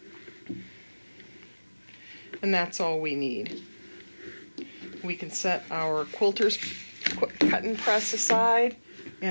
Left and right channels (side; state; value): both; inverted; correlation -1.00